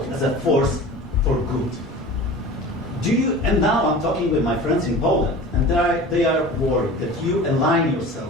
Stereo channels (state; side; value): normal; both; correlation 0.38